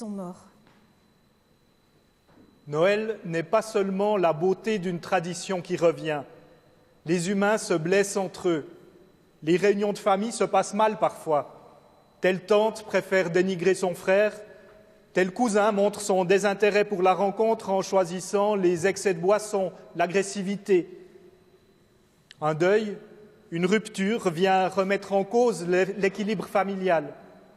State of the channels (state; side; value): identical; both; correlation 1.00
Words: morts. Noël n'est pas seulement la beauté d'une tradition qui revient. Les humains se blessent entre eux. Les réunions de famille se passent mal parfois. Telle tante préfère dénigrer son frère, tel cousin montre son désintérêt pour la rencontre en choisissant les excès de boisson, l'agressivité. Un deuil, une rupture vient remettre en cause l'équilibre familial.